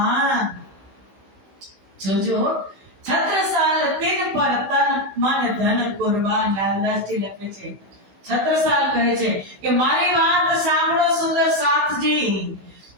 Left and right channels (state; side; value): late; left; 16 ms